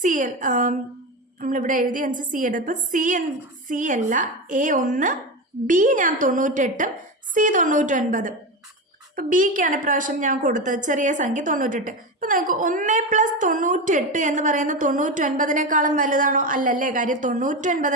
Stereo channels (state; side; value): normal; both; correlation 0.19